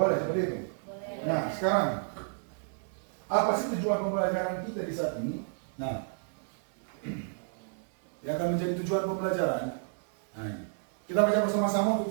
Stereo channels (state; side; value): silent; left; digital silence